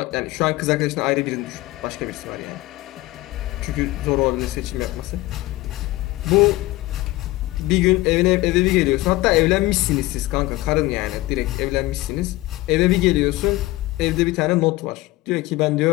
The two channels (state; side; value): quieter; right; 18.9 dB